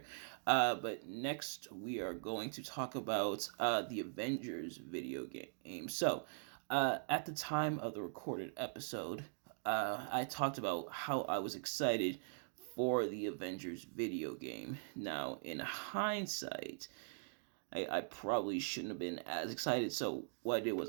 But next we are going to talk about the Avengers video game. So at the time of the recorded episode, I talked about how I was excited for the Avengers video game. Now, in hindsight, I probably shouldn't have been as excited. So what I did was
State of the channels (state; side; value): silent; left; digital silence